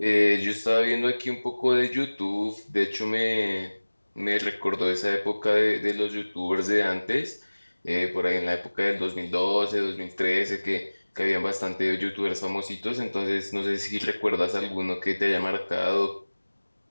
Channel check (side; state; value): both; inverted; correlation -1.00